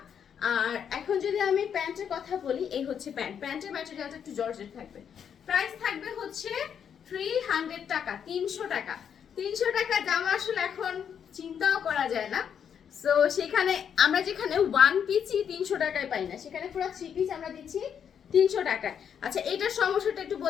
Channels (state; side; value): quieter; right; 8.0 dB